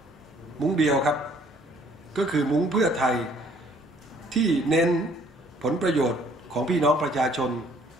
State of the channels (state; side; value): normal; both; correlation 0.60